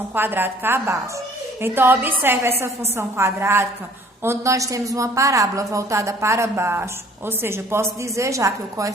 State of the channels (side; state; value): both; normal; correlation 0.55